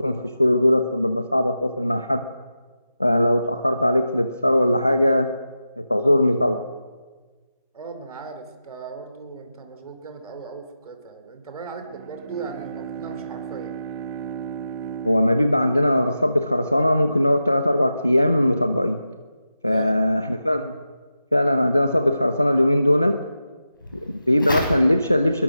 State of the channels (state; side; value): inverted; both; correlation -0.90